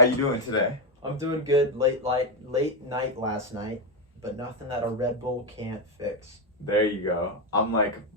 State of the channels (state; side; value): normal; both; correlation 0.06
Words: you doing today? I'm doing good. Late night last night, but nothing that a Red Bull can't fix. There you go. I'm